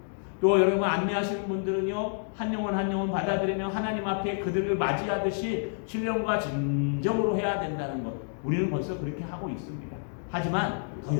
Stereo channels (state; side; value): silent; right; digital silence